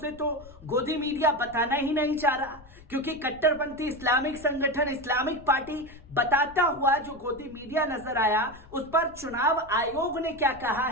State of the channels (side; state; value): left; noise; rumble, 21 dB below the sound